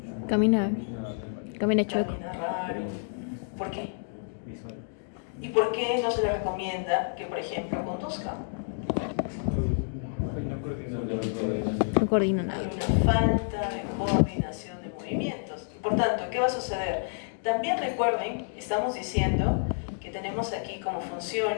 Camina chueco. Camina raro. ¿Por qué? ¿Y por qué no se le recomienda que, por ejemplo, conduzca? No coordina nada. Hay una falta de coordinación de movimientos. Y por tanto, ¿qué va a suceder? También recuerden, estamos diciendo que tenemos aquí como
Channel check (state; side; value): silent; right; digital silence